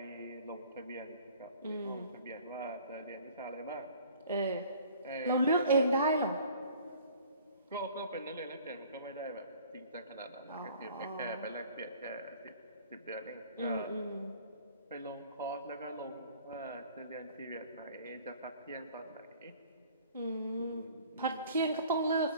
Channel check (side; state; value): both; inverted; correlation -0.51